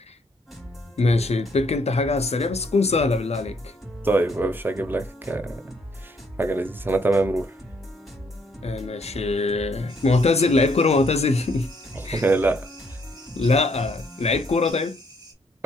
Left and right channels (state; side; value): normal; both; correlation 0.69